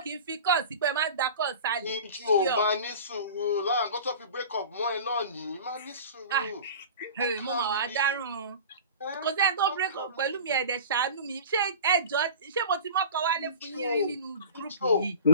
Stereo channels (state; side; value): inverted; both; correlation -0.37